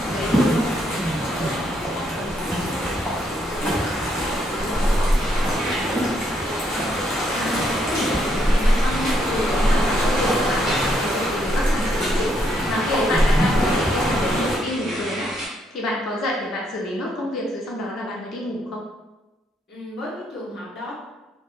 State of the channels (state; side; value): normal; both; correlation 0.74